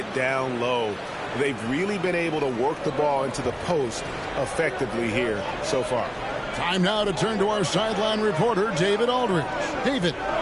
down low. They've really been able to work the ball into the post effectively here so far. Time now to turn to our sideline reporter, David Aldridge. David.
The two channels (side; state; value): both; identical; correlation 1.00